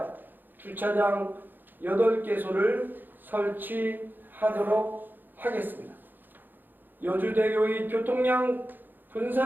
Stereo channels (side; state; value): left; late; 0.090 ms